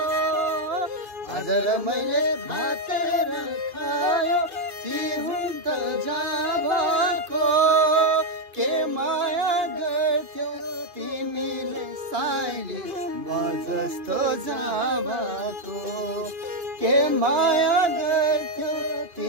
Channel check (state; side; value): late; left; 2.5 ms